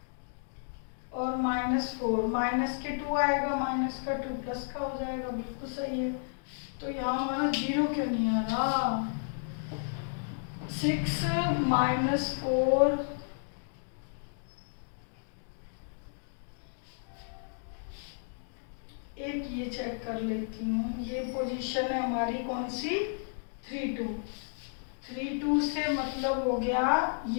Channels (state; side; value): silent; right; digital silence